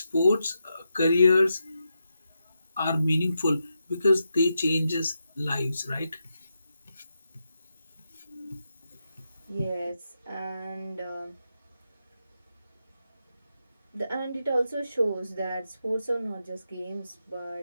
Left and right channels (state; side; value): inverted; both; correlation -0.86